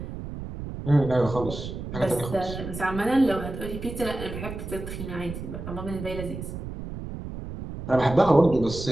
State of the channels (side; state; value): right; noise; rumble, 9 dB below the sound